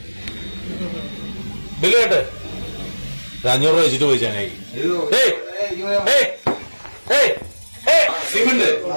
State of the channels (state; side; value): inverted; both; correlation -1.00